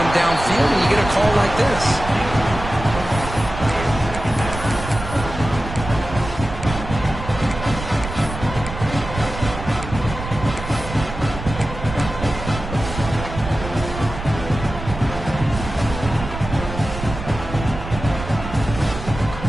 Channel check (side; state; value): right; noise; rumble, 9 dB below the sound